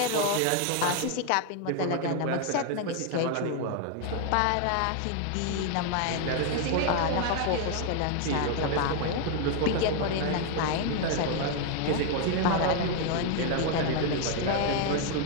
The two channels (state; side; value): different; both; correlation 0.00